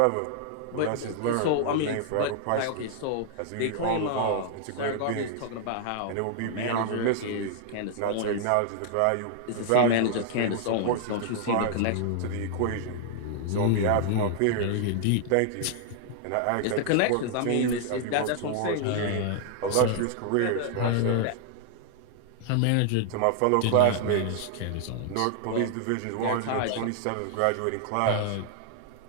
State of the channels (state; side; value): different; both; correlation 0.00